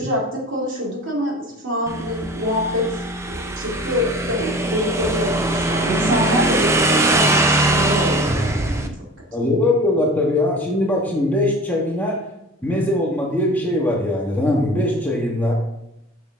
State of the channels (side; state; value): both; normal; correlation 0.39